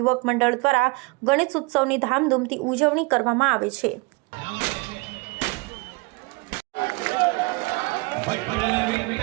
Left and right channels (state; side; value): quieter; left; 26.1 dB